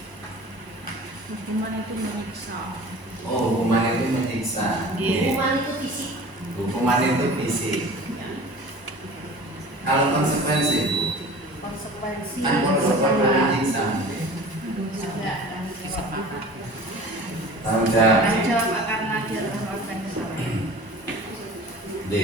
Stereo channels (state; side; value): late; left; 1.0 ms